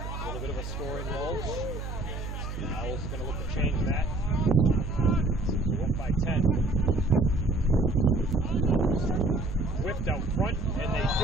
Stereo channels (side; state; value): right; noise; hum, 7 dB below the sound